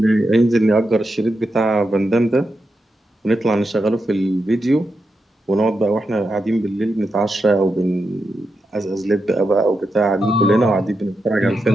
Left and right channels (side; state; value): both; normal; correlation 0.87